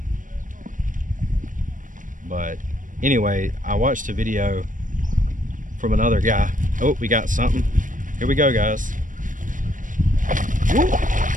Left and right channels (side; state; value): left; late; 0.38 ms